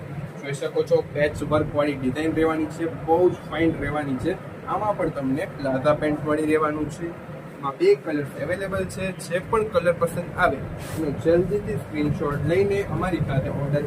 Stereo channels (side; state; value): both; identical; correlation 1.00